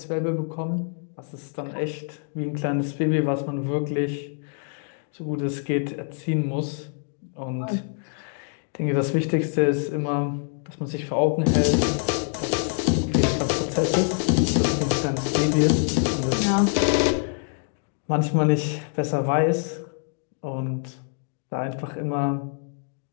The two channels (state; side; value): silent; right; 56 dB below the other